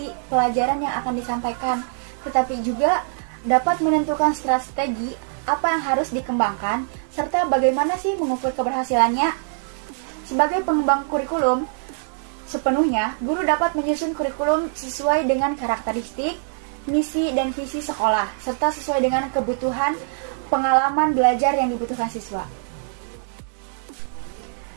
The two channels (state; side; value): silent; left; digital silence